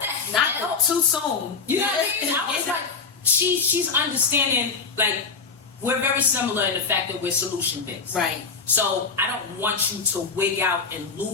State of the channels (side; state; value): right; quieter; 5.0 dB